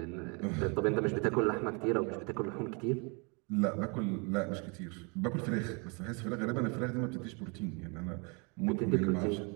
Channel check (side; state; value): left; quieter; 32.5 dB